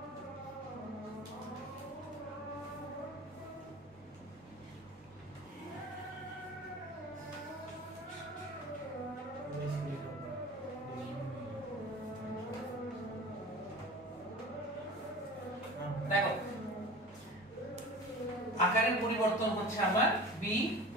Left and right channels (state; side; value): normal; both; correlation 0.37